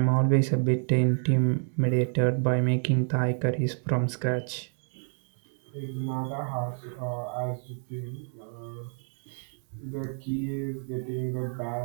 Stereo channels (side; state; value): left; silent; 59 dB below the other